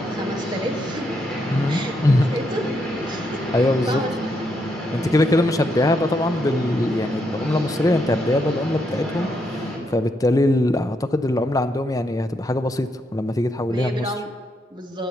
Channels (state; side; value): normal; both; correlation 0.79